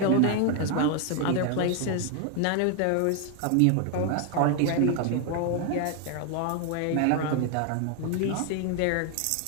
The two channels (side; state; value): both; different; correlation 0.01